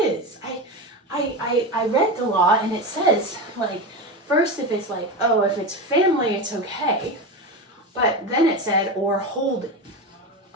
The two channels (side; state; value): both; normal; correlation 0.21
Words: I read the law, and it says, first if it's if it's family, it's okay. But then it said, or holding,